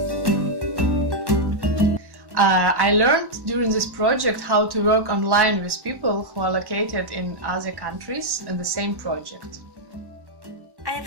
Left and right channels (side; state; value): left; late; 1.1 ms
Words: I learned during this project how to work online with people who are located in other countries in the same project. I